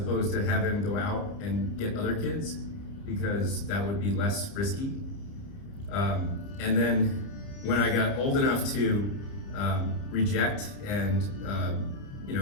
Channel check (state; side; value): late; right; 29 ms